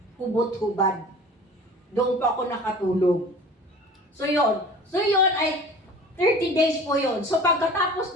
Hubot-hubad. Doon pa ako nakatulog. So yun ay 30 days po yun. So pagkatapos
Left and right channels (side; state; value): both; normal; correlation 0.42